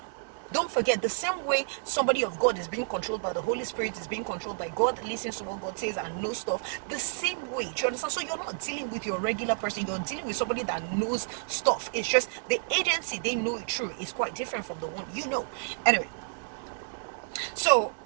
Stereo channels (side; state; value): left; silent; 58 dB below the other